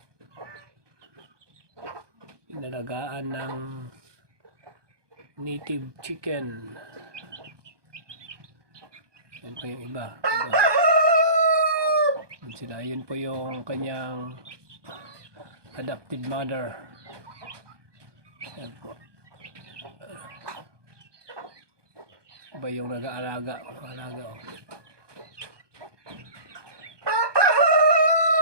Inalagaan ng native chicken. Yan po yung iba. Yan sila. Yun po yung kanyang adopted mother. Yan po. Iba yung nag-aalaga. Oh.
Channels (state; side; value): late; left; 1.2 ms